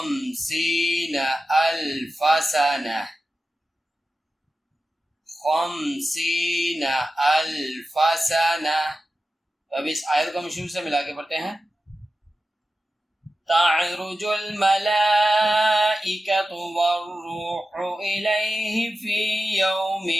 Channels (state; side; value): normal; both; correlation 0.93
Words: अल्फ सना। 50 अल्फ सना। अब इस आयत को हम शुरू से मिला के पढ़ते हैं। तअरुजुल मलाइकतु वर्रूहु इलैहि फी